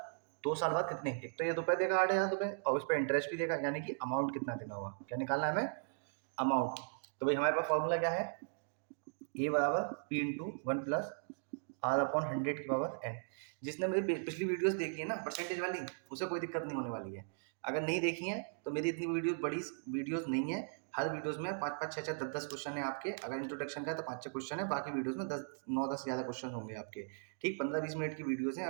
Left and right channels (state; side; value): silent; left; digital silence